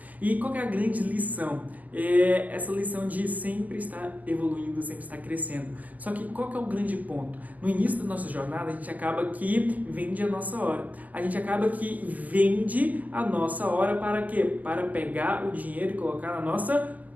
E qual que é a grande lição? É essa lição de sempre estar evoluindo, sempre estar crescendo. Só que qual que é o grande ponto? No início da nossa jornada, a gente acaba que vende a nossa hora. A gente acaba que vende a nossa hora para quê? Para pegar o dinheiro e colocar na nossa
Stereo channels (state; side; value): late; left; 0.080 ms